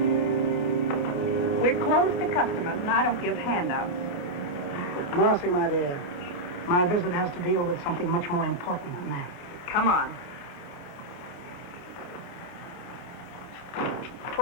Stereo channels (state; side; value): late; right; 28 ms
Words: We're closed to customers, and I don't give handouts. Marcy, my dear, my visit has to deal with something much more important than that. Come on.